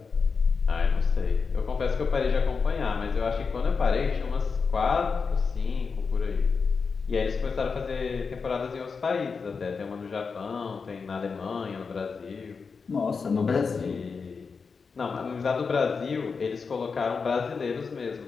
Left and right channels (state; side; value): quieter; right; 5.2 dB